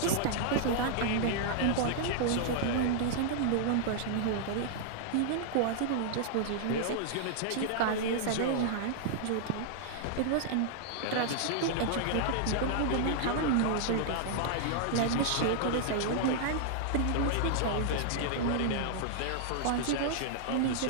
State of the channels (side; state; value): both; different; correlation -0.01